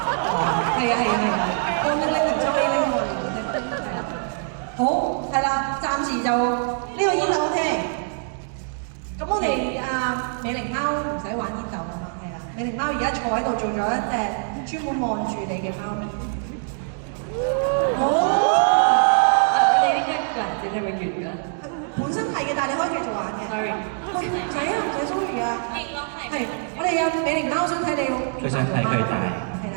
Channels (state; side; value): silent; left; 63 dB below the other